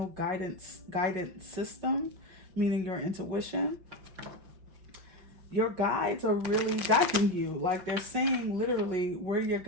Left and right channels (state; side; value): late; left; 5.8 ms